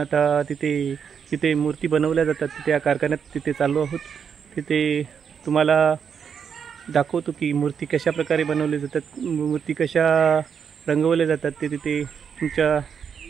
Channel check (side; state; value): left; quieter; 7.1 dB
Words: तिथे मूर्ती बनवल्या जातात, त्या कारखान्यात तिथे चाललो आहोत. तिथे तुम्हाला दाखवतो की मूर्ती कशा प्रकारे बनवल्या जातात, मूर्ती कशा रंगवल्या जातात, ते तिथे